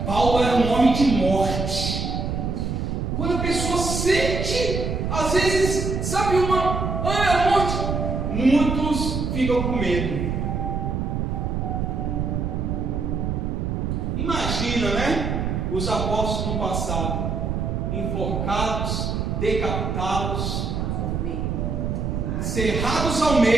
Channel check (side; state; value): right; noise; rumble, 1 dB below the sound